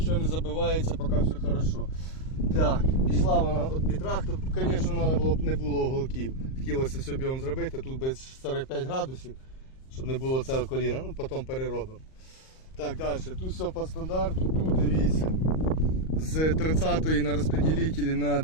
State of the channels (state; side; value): late; right; 38 ms